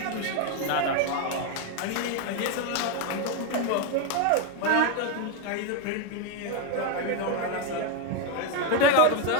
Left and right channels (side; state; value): both; different; correlation 0.02